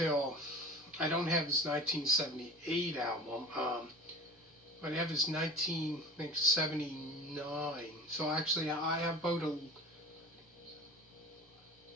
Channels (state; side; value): normal; both; correlation 0.39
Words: I don't have his 1978 album, but I have his 1979. So actually I have about